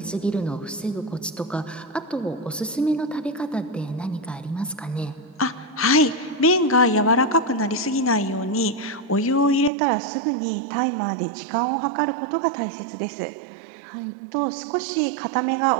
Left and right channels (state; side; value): drops out; left; at 9.7 s